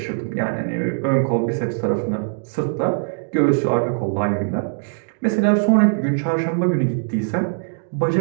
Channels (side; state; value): left; silent; digital silence